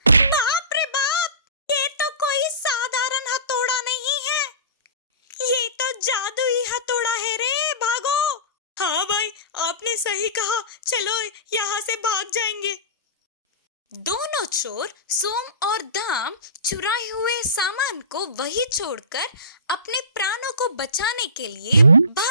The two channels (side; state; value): both; inverted; correlation -0.32